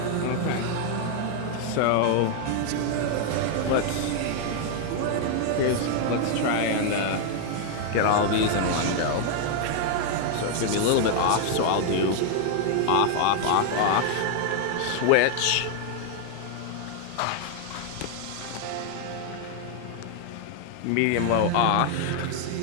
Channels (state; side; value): different; both; correlation 0.00